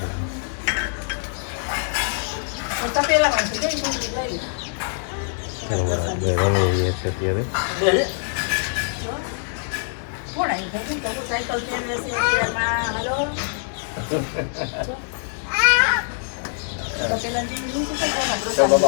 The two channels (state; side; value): silent; right; digital silence